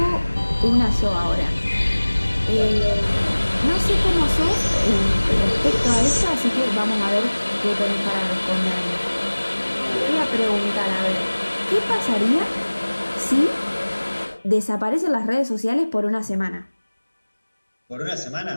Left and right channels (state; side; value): inverted; both; correlation -1.00